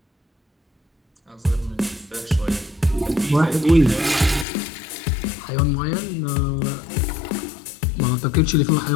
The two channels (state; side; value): drops out; right; at 4.5 s